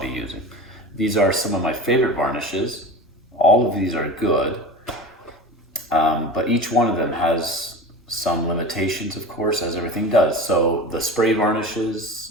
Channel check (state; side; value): normal; both; correlation 0.33